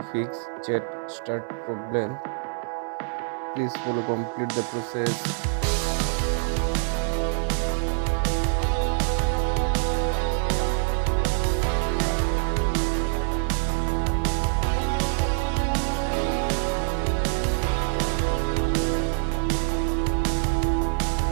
fix chat start problem. Please follow complete the process.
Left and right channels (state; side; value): silent; left; digital silence